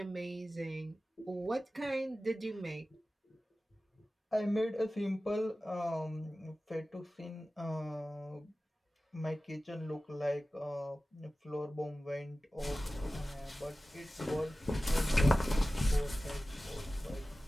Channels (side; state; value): both; normal; correlation 0.96